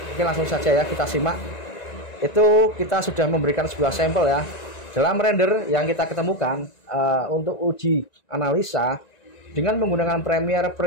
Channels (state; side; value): late; right; 1.9 ms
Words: Oke, langsung saja ya kita simak. Itu kita sudah memberikan sebuah sampel ya. Dalam render yang kita ketemukan untuk uji analisa dengan menggunakan